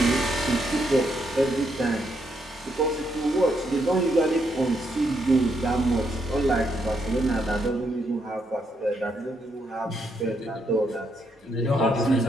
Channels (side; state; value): both; normal; correlation 0.77